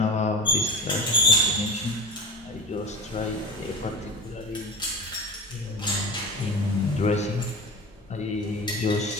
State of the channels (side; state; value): both; normal; correlation 0.30